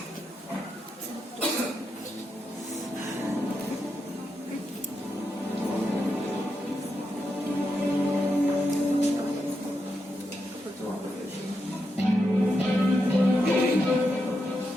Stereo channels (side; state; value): both; normal; correlation 0.85